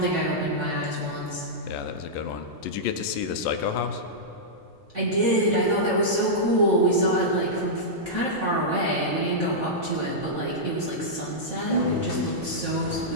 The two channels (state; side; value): normal; both; correlation -0.11